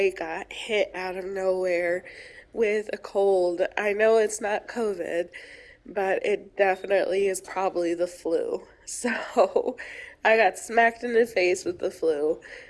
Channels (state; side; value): identical; both; correlation 1.00